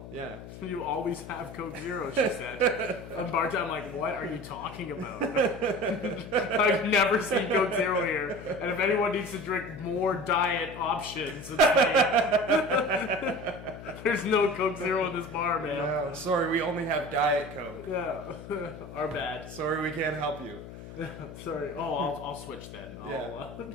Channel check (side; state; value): left; noise; hum, 13 dB below the sound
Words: yeah. You always have Coke Zero, she said. And Bart, I'm like, what are you talking about? I've never seen Coke Zero here. And if anyone needs to drink more diet options, it's me. There's no Coke Zero in this bar, man. No, sorry, we only have Diet Coke. Yeah. Our bad. Sorry, we can't help you. Sorry. Oh, I'll switch then. Yeah,